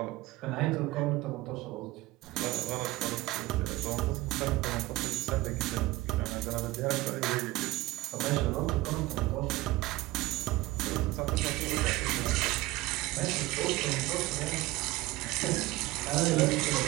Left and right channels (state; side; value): quieter; left; 19.2 dB